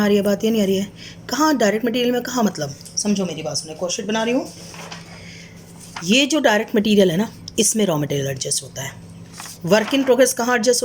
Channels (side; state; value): both; identical; correlation 1.00